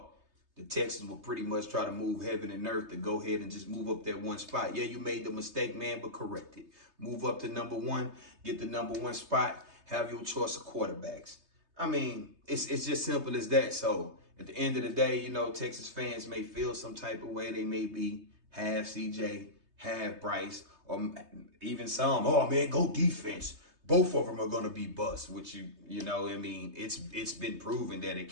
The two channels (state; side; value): late; left; 3.2 ms